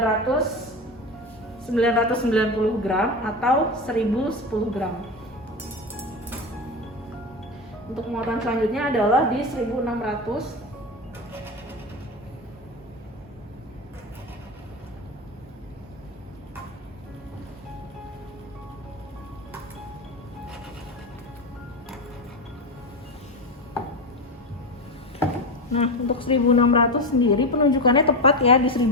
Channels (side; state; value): both; normal; correlation 0.19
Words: gram atau 1010 gram. Untuk muatan selanjutnya adalah di 1600. Nah, untuk 1600 sendiri penunjukannya tepat ya di